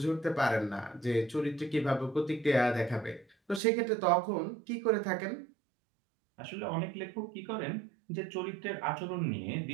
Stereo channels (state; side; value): drops out; left; at 3.6 s